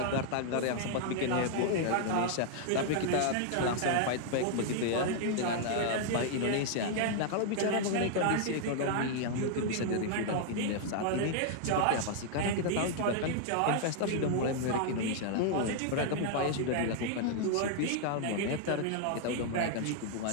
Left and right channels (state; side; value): different; both; correlation 0.00